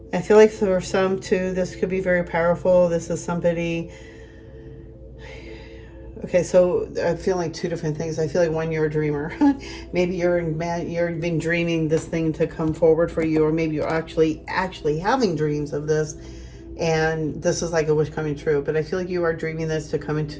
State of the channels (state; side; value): identical; both; correlation 1.00